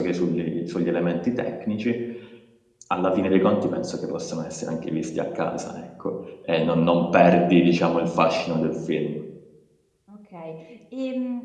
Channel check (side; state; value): both; identical; correlation 1.00